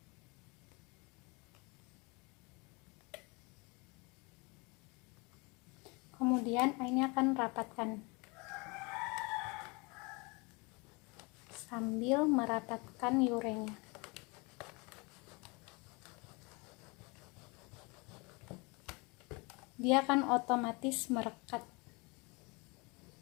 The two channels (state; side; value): quieter; right; 28.1 dB